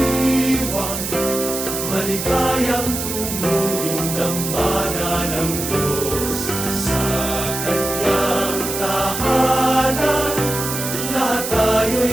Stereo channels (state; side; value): noise; right; hiss, 4 dB below the sound